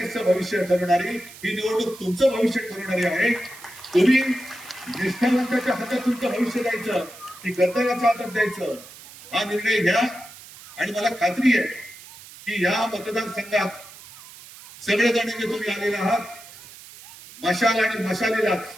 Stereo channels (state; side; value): noise; right; hiss, 18 dB below the sound